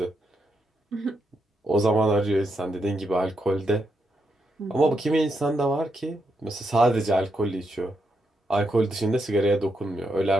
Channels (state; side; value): normal; both; correlation 0.81